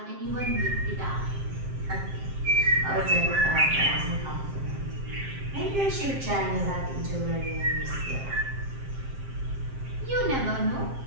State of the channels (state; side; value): late; left; 7.6 ms